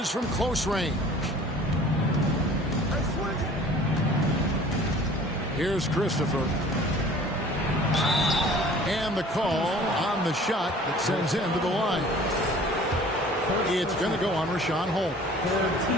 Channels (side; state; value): both; normal; correlation 0.48